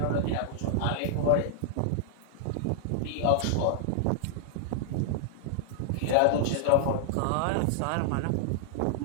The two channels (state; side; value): different; both; correlation -0.01